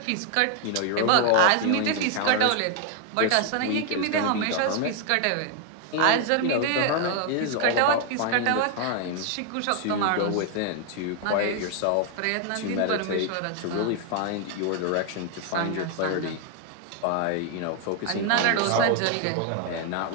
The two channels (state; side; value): different; both; correlation 0.00